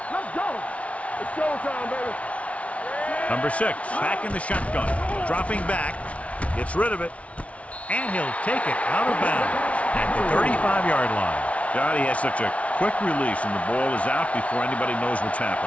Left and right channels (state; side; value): late; right; 0.064 ms